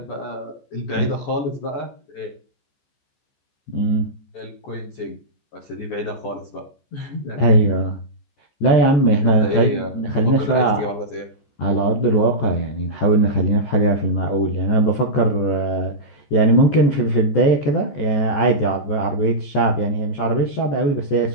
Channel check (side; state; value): right; late; 14 ms